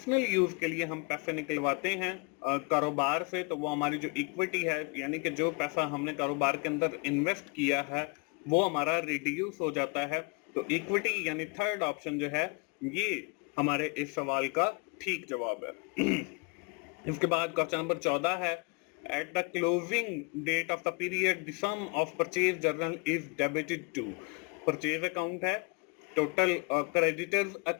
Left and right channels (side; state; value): right; quieter; 30.5 dB